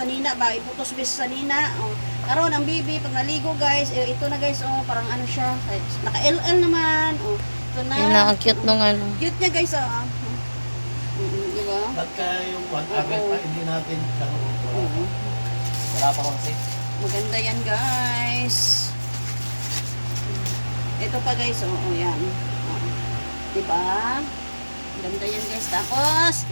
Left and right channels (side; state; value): both; inverted; correlation -1.00